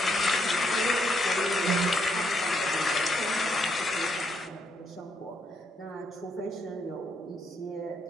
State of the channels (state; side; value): normal; both; correlation 0.75